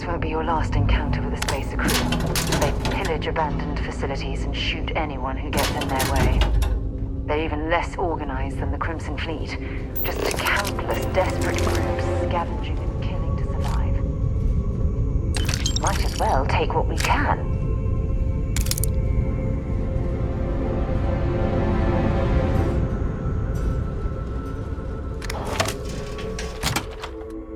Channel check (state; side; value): identical; both; correlation 1.00